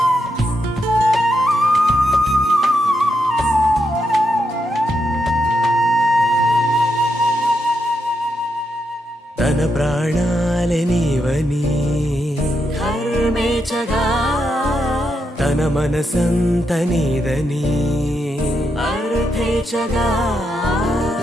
మన మనసంత నీదని అర్థేచగా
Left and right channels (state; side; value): normal; both; correlation 0.82